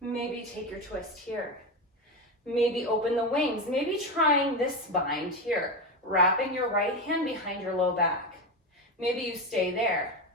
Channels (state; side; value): normal; both; correlation 0.17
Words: take your twist here. Maybe open the wings. Maybe trying this bind here. Wrapping your right hand behind your low back. Maybe you stay there.